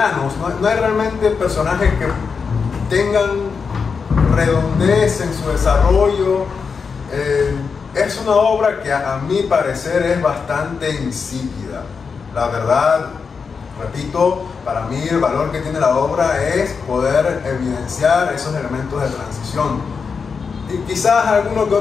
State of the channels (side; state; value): right; quieter; 5.5 dB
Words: No hay realmente personajes que tengan redondez en su desarrollo. Es una obra que a mi parecer es bastante insípida. La verdad, repito, para mí el valor que tiene la obra es poder evidenciar esos elementos de transición. Y quizás alguno que